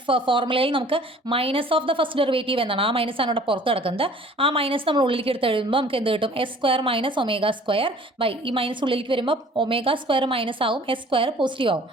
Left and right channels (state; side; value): normal; both; correlation 0.51